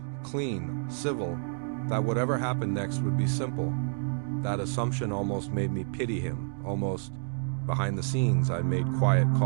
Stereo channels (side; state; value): left; silent; 58 dB below the other